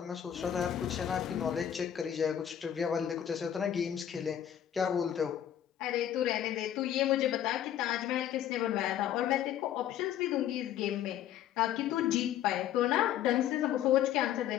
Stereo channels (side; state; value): right; quieter; 10.5 dB